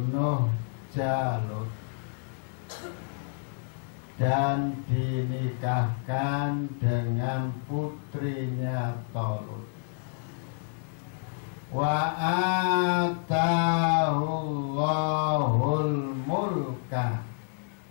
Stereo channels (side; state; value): right; silent; digital silence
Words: Jalut dan dinikahkan dengan putrinya Talut, wa atahullahul mulka